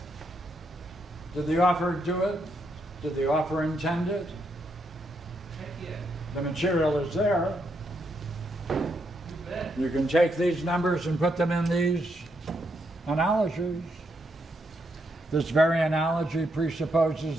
did the author do it? Did the author intend it? The material is there. You can take these numbers and put them in these analogies. This very analogy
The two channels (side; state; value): both; normal; correlation 0.79